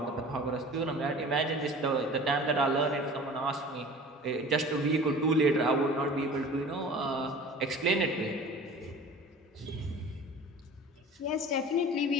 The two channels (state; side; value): normal; both; correlation 0.41